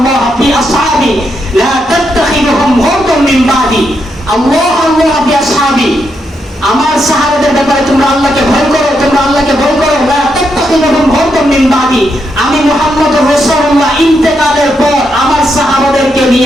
ফি আসহাবি লা তাত্তাখিযুহুম গুরদান মিন বাদি, আল্লাহ আল্লাহ ফি আসহাবি, আমার সাহাবাদের ব্যাপারে তোমরা আল্লাহকে ভয় করো, তোমরা আল্লাহকে ভয় করো, লা তাত্তাখিযুহুম গুরদান মিন বাদি, আমি মুহাম্মদুর রাসূলুল্লাহ ইন্তেকালের পর আমার সাহাবাদেরকে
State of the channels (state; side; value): normal; both; correlation 0.81